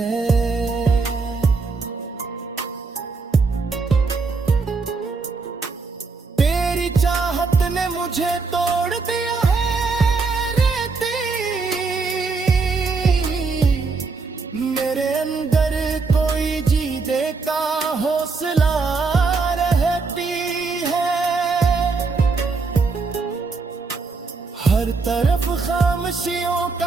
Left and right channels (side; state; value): left; quieter; 4.4 dB